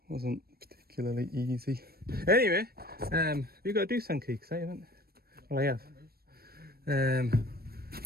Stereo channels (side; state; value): left; late; 0.44 ms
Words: wasn't particularly easy. Anyway, you got to do some key, I haven't. Well, I have.